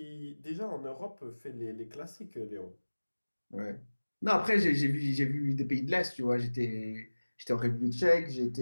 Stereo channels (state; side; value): inverted; both; correlation -1.00